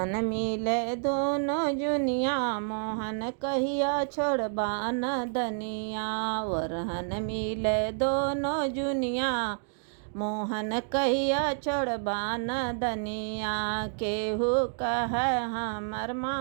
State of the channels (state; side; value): silent; left; digital silence